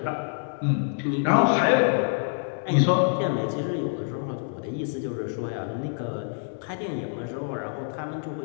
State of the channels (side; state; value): right; silent; digital silence